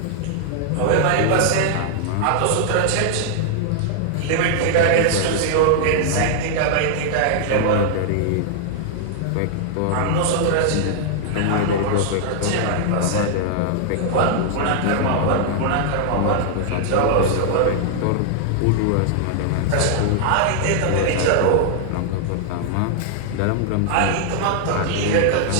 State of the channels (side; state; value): both; different; correlation -0.01